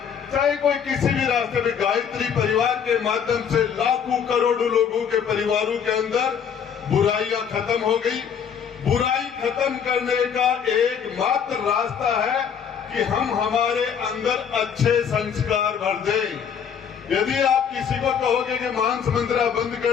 चाहे कोई किसी भी रास्ते में, गायत्री परिवार के माध्यम से लाखों करोड़ों लोगों के परिवारों के अंदर बुराइयां खत्म हो गई। बुराई खत्म करने का एकमात्र रास्ता है कि हम हमारे अंदर अच्छे संस्कार भर दें। यदि आप किसी को कहोगे कि मांस मंदिरा बंद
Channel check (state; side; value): quieter; right; 7.5 dB